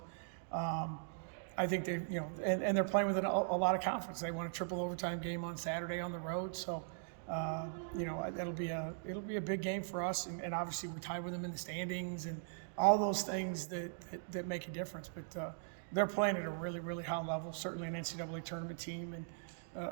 I think they, you know, and they're playing with a lot of confidence. They won a triple overtime game on Saturday on the road. So, you know, it'll be a big game for us. And obviously we tied with them in the standings and all those things that make a difference. But they're playing at a really, really high level, certainly an NCAA tournament team, and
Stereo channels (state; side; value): silent; left; digital silence